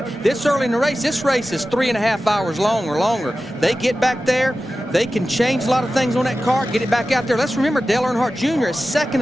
This early in the race, this race is 3.5 hours long or longer. They get back there, they can change a lot of things on that car, get it back out there. Let's remember Dale Earnhardt Jr. is second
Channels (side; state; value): both; normal; correlation 0.94